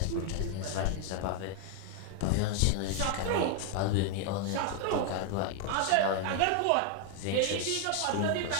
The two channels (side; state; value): both; different; correlation 0.00